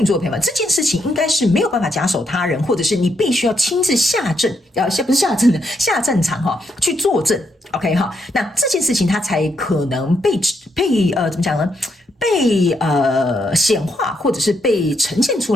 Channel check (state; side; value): normal; both; correlation 0.77